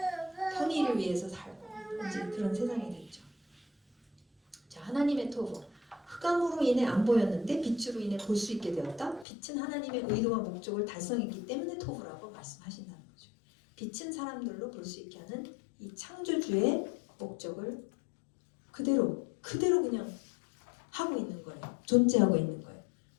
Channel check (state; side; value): drops out; right; at 9.2 s